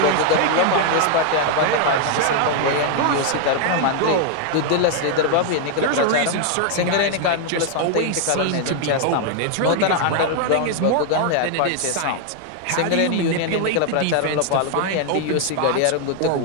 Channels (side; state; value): both; different; correlation 0.00